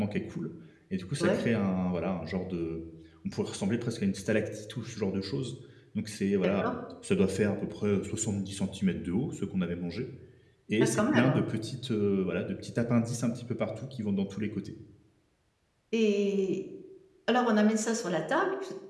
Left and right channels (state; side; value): identical; both; correlation 1.00